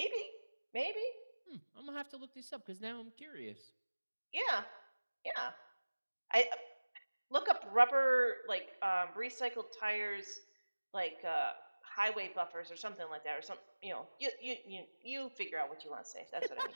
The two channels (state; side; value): inverted; both; correlation -1.00